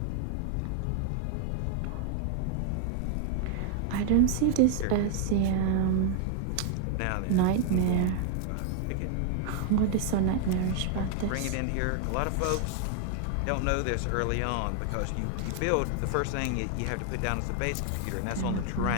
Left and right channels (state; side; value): different; both; correlation 0.00